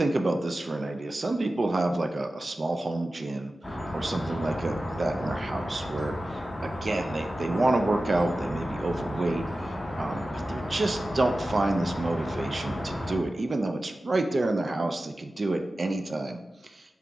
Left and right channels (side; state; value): both; normal; correlation 0.95